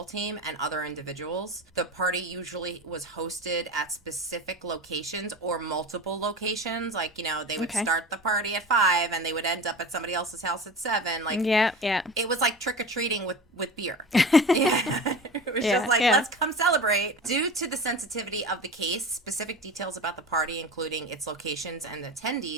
team and other individuals. The party usually was hosted at specific locations or multiple locations. Like, they would start the party at 5 and they would end up at somebody else's house at 7. Like, it was like trick-or-treating with beer. It was just like, let's come celebrate. Due to the sensitivity of the case, specific details about the party, including its locations and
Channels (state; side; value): normal; both; correlation 0.32